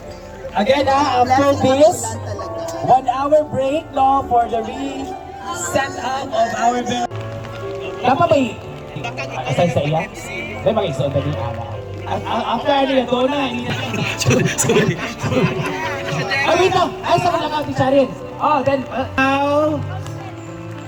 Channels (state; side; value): identical; both; correlation 1.00